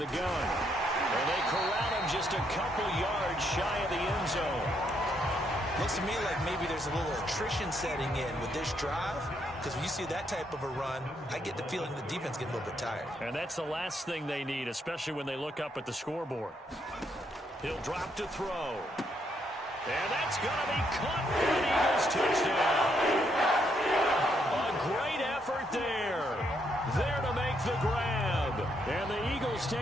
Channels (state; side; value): normal; both; correlation 0.75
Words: gun. And they corral him just a couple yards shy of the end zone. Looks to me like maybe there's a little attrition setting in with this drive. Because when you see that type of a run, I get the feeling the defense getting a little bit tired. And that's the last thing they need, especially when they look up at the scoreboard. He'll drop to throw. And that's going to be caught for an Eagles touchdown. A great effort there. There to make the grab. And the Eagles Panthers